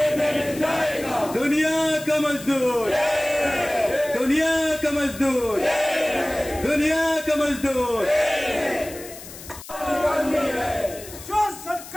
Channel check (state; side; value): noise; left; hiss, 15 dB below the sound